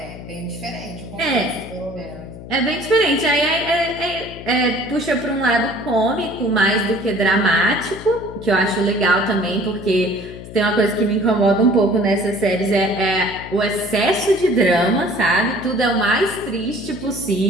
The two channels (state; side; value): noise; left; hum, 14 dB below the sound